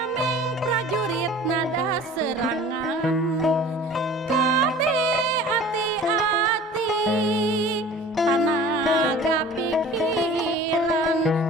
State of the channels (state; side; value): normal; both; correlation 0.44